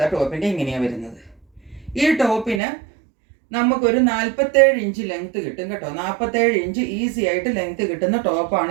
ടോപ്പിൻ്റെ ഇങ്ങനെയാണ് വരുന്നത്. ഈ ടോപ്പിന് നമുക്കൊരു 47 ഇഞ്ച് ലെങ്ത് കിട്ടും കേട്ടോ. 47 ഇഞ്ച് ഈസി ആയിട്ട് ലെങ്ത് കിട്ടുന്ന ടോപ്പാണ്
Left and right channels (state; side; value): drops out; left; at 2.6 s